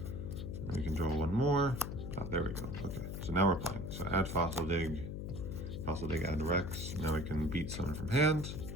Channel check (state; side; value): noise; left; hum, 5 dB below the sound